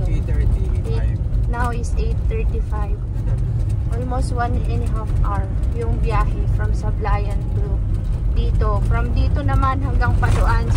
8:35. Now is 8:35. Almost 1.5 hour yung biyahe from Sablayan to dito. From dito naman hanggang Paluan,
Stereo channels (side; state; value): both; identical; correlation 1.00